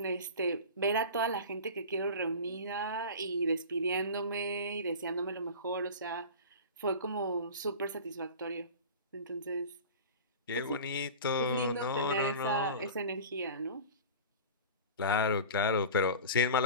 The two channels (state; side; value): inverted; both; correlation -0.34